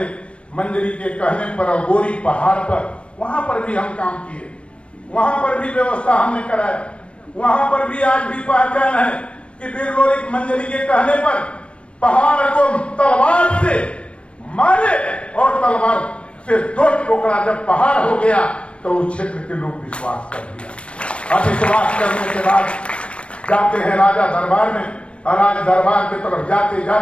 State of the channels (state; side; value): late; right; 0.060 ms